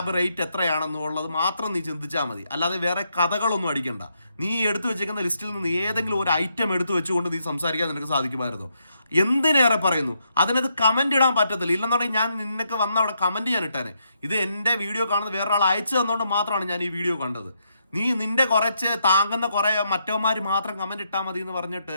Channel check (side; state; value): both; inverted; correlation -0.78